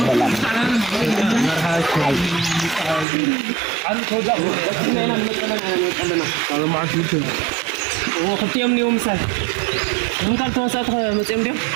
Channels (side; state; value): left; drops out; at 3.1 s